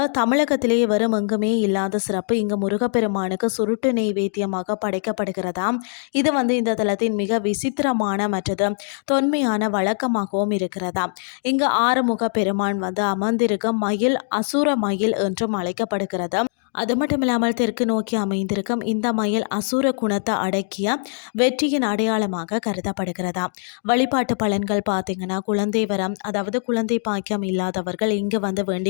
தமிழகத்திலே வரும் எங்குமே இல்லாத சிறப்பு இங்கு முருகப்பெருமானுக்கு சுருட்டு நெய்வேத்தியமாக படைக்கப்படுகிறதாம். இது வந்து இந்த தலத்தின் மிக விசித்திரமான மற்றது தொன்மையான வழக்கமாகவும் இருக்கிறதாம். இங்கு ஆறுமுக பெருமான் வந்து அமர்ந்திருக்க மயில் அசுர மயில் என்றும் அழைக்கப்படுகிறது. அது மட்டும் இல்லாமல் தெற்கு நோக்கி அமைந்திருக்கும் இந்த மயில் அசுர குணத்தை அடக்கிய வெற்றியின் அடையாளமாக கருதப்படுகிறதா. வழிபாட்டு பலன்கள் பார்த்தீங்கன்னா, குழந்தை வரம், அதாவது குழந்தை பாக்கியம் இல்லாதவர்கள் இங்கு வந்து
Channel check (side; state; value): right; silent; digital silence